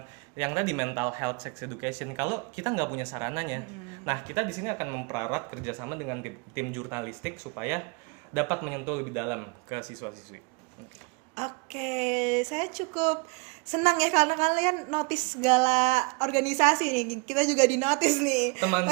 yang tadi mental health, sex education. Kalau kita nggak punya sarananya, nah kita di sini akan mempererat kerjasama dengan tim jurnalistik supaya dapat menyentuh lebih dalam ke siswa-siswi. Oke, saya cukup senang ya karena kalian notice segala organisasi nih. Kita juga di notice nih. Teman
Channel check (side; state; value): left; quieter; 30.0 dB